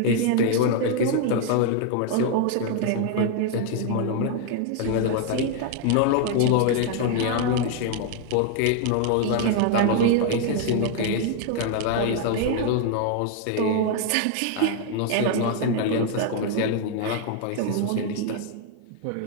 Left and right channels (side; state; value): both; different; correlation 0.00